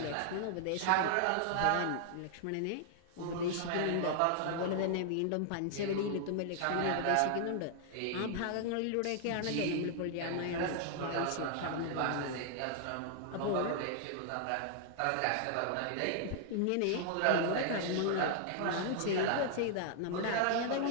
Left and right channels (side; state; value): both; different; correlation 0.00